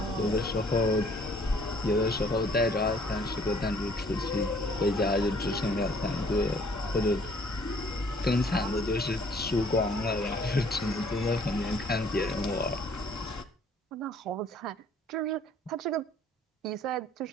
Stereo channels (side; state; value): both; normal; correlation 0.59